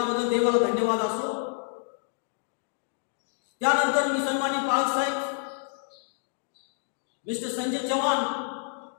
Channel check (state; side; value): silent; right; digital silence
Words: देवाला धन्यवाद असो. त्यानंतर मी सन्मानित पालक साहेब मिस्टर संजय चव्हाण